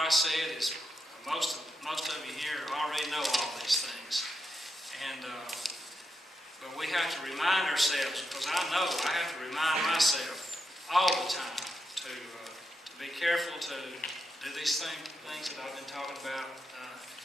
said is most of you here already know all these things. And but we have to remind ourselves, because I know I have to remind myself all the time to be careful to do these things that I've been talking about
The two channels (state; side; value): normal; both; correlation 0.85